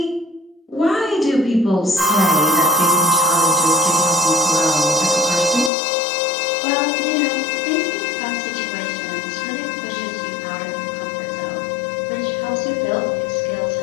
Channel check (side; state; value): right; drops out; at 5.7 s